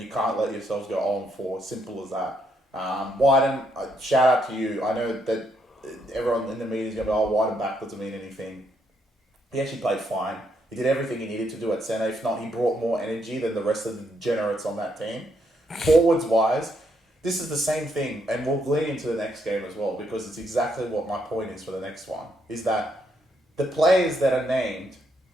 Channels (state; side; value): normal; both; correlation 0.75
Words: you can't let yourselves go 0-4. Simple as that. Wyden, shout out to you. I know that everyone in the media is going to be, Wyden back doesn't mean anything. He actually played fine. He did everything he needed to do at centre. If not, he brought more energy than the rest of the degenerates on that team. Forwards-wise, this is the same thing, and we'll lead into the next game as well, because it's exactly what my point is for the next one, is that the players that are named